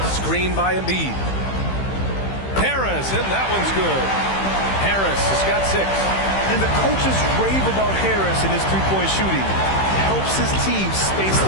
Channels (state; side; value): late; right; 15 ms